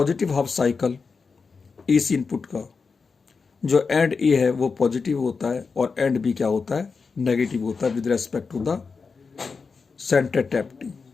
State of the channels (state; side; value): quieter; right; 4.9 dB